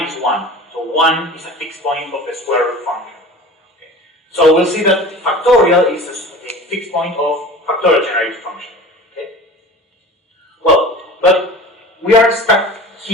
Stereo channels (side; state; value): both; normal; correlation 0.38